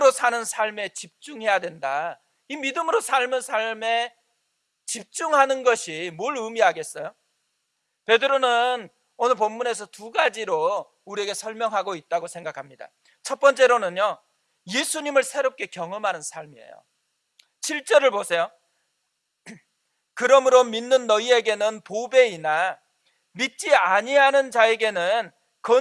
사는 삶에 집중해야 된다, 이 믿음으로 삶은 삶에 집중하는 것이 뭘 의미하겠어요? 베드로는 오늘 본문에서 두 가지로 우리에게 설명하고 있다고 생각합니다. 첫 번째로는요, 예수님을 새롭게 경험하는 삶이에요. 7절을 보세요. 그러므로 믿는 너희에게는 보배이나 믿지 아니하는 자에게는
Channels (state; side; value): identical; both; correlation 1.00